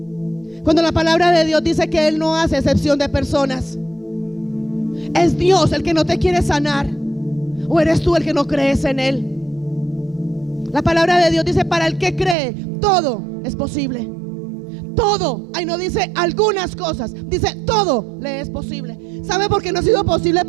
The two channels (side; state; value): left; drops out; at 12.4 s